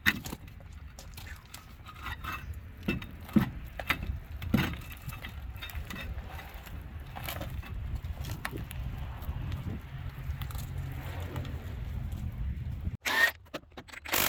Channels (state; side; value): identical; both; correlation 1.00